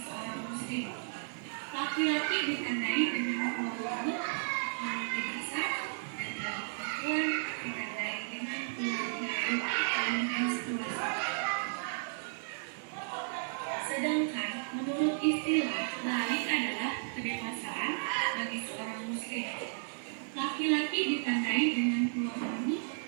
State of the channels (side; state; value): left; silent; digital silence